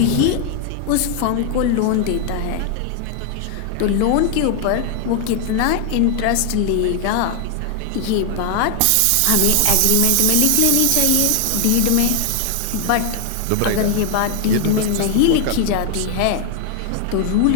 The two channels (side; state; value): both; different; correlation 0.00